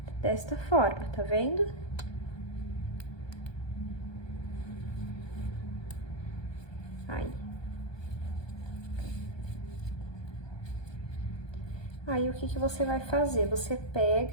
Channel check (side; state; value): right; late; 1.2 ms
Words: desta forma, tá vendo? Aí, o que que você vai fazer? Você